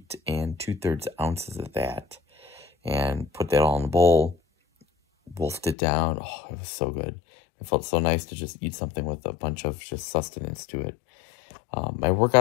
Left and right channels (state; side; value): drops out; right; at 5.8 s